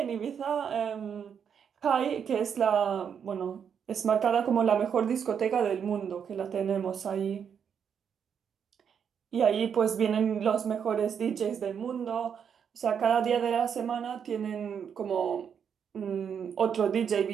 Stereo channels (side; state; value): left; quieter; 7.5 dB